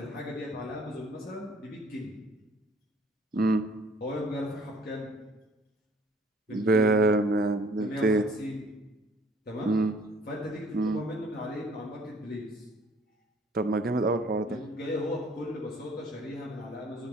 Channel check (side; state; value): both; normal; correlation 0.57